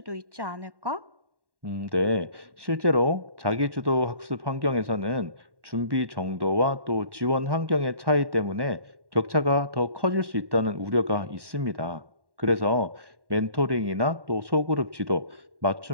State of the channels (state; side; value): late; left; 1.1 ms